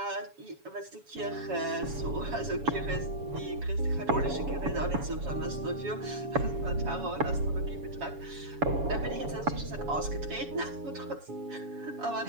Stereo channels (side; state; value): left; late; 7.1 ms